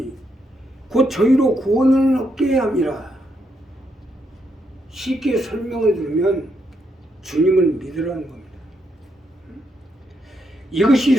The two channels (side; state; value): both; normal; correlation 0.79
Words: 곧 저희로 구원을 얻게 함이라. 쉽게 설명을 들으면 주님을 믿으라는 겁니다.